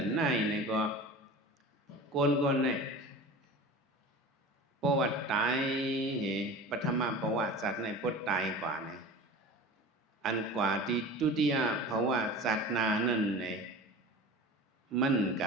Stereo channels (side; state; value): both; normal; correlation 0.35